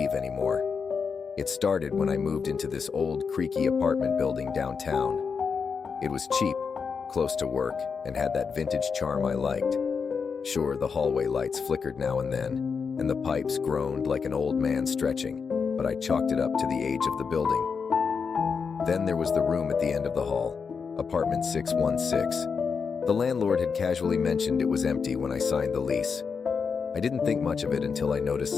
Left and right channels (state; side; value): quieter; right; 5.7 dB